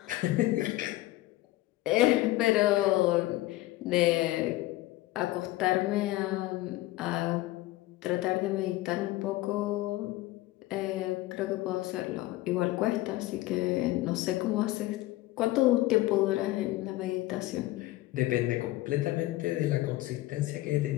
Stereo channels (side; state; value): right; quieter; 17.5 dB